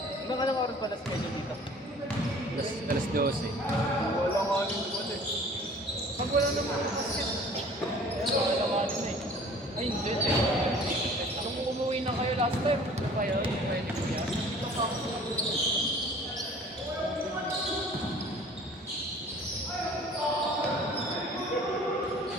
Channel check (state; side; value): normal; both; correlation 0.49